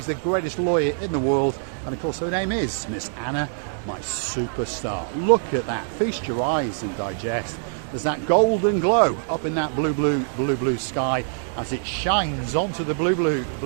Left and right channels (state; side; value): silent; left; digital silence